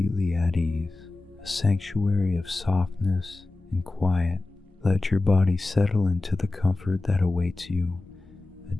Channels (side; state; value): right; quieter; 3.3 dB